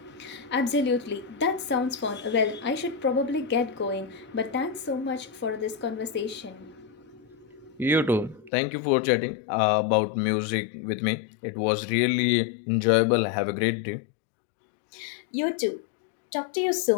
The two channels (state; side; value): drops out; right; at 8.5 s